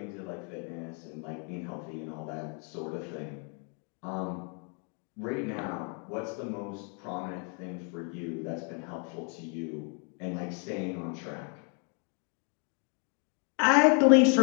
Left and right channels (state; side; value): quieter; right; 39.3 dB